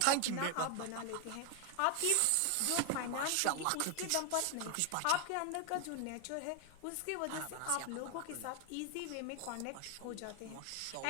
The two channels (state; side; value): different; both; correlation 0.01